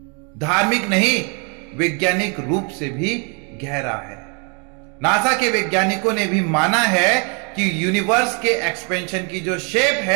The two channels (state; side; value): quieter; left; 34.9 dB